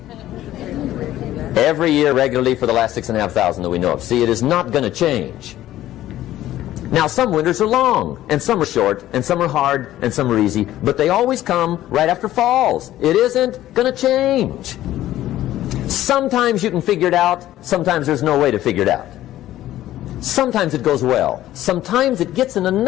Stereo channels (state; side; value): quieter; right; 13.9 dB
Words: Every year regularly for the last 6,500 that we know of. See, it is not going to change. Now, some winters are long, and some are short, and some are hard, and some are easy, but they always come right after falls. It isn't going to change. Sometimes you can figure it out, sometimes there's no way to figure it out. Sometimes it goes well. Sometimes it gets in a